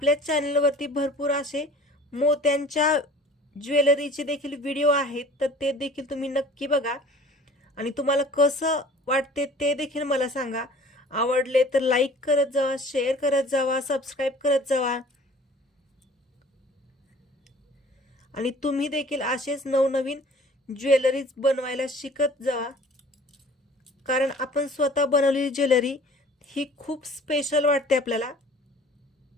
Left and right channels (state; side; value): normal; both; correlation 0.48